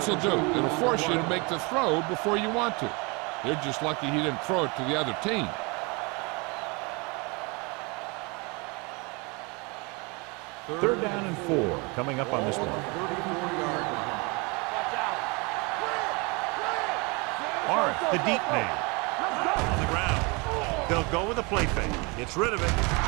will do. It'll force you to make the throw before you want to. They're just lucky he didn't throw it to the other team. Third down and 4 coming up on this one. Arth, the deep man. On the ground. They'll go with a play fake. Gets rid of it.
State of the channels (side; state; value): left; quieter; 28.8 dB